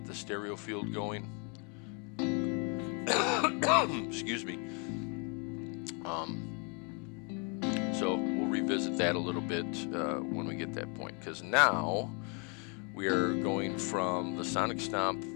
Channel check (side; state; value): right; quieter; 36.1 dB